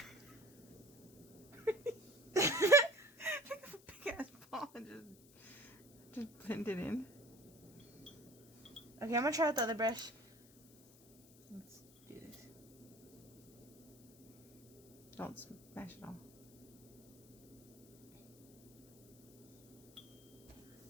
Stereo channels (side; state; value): left; noise; hiss, 24 dB below the sound